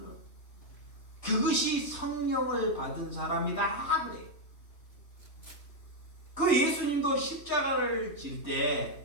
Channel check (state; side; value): late; right; 3.2 ms